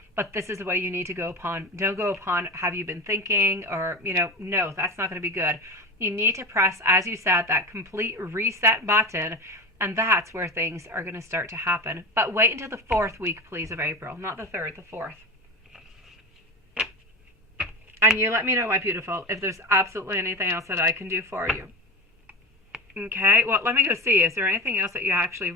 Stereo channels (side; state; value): both; normal; correlation 0.24